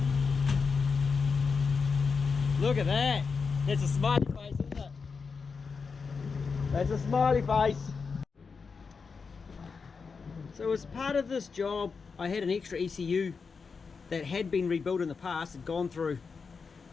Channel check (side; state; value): right; quieter; 5.1 dB